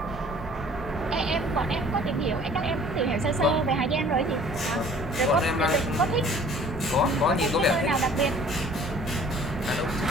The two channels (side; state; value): both; normal; correlation 0.52